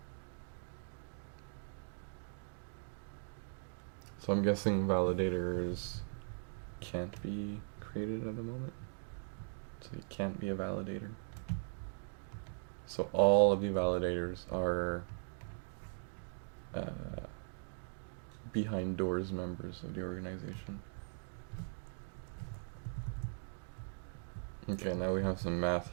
So I'm guessing validators can't be created at the moment. So you can't be a validator. So all of the validators are behind doors members of the organization. Okay, now we have some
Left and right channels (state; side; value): silent; left; digital silence